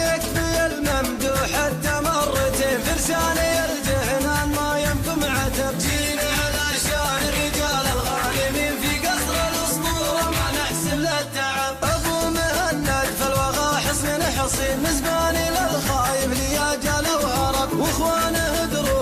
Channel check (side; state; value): both; identical; correlation 1.00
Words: يكفي الممدوح حتى مرتين فرساني الجهنان ما يمكم عتب. جينا على شان الرجال الغالبين في قصر الاسطوره ما نحسب للتعب ابو مهند في الوغى حصن حصين مزباني للخايف لياجال وهرب واخوانه